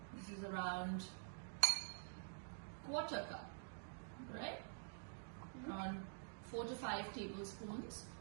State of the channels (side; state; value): left; silent; digital silence